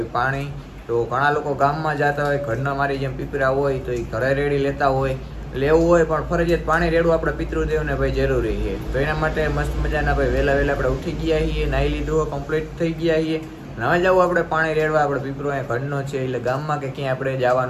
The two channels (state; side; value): identical; both; correlation 1.00